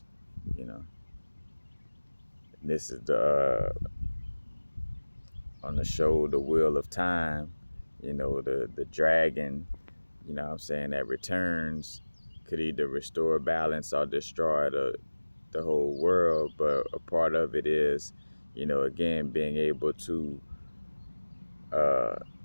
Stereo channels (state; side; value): inverted; both; correlation -1.00